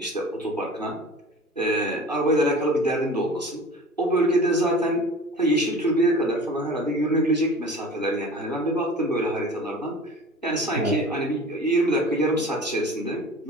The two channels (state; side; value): normal; both; correlation 0.41